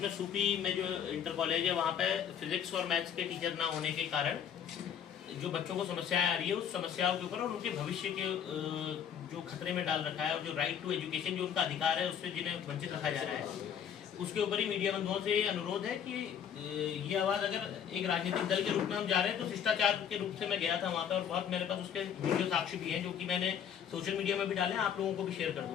सूपी में जो इंटर कॉलेज है वहाँ पे फिजिक्स और मैथ्स के टीचर ना होने के कारण जो बच्चों को समस्याएं आ रही है उस समस्याओं के ऊपर और उनके भविष्य के जो खतरे में डाल रखा है और जो राइट टू एजुकेशन जो उनका अधिकार है उससे जिन्हें वंचित रखा जा रहा है, उसके ऊपर ही मीडिया बंधुओं से ये अनुरोध है कि ये आवाज़ अगर एक राजनीतिक दल के रूप में हम जा रहे हैं तो शिष्टाचार के रूप से मैं गया था वहाँ पे और बहुत मेरे पास उसके वीडियो साक्ष्य भी हैं जो कि मैंने सोशल मीडिया में भी डाले, आप लोगों को भी शेयर कर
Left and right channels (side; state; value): right; quieter; 8.5 dB